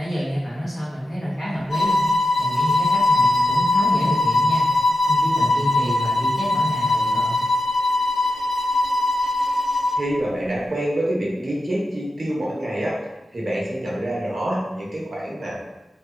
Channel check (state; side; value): normal; both; correlation 0.88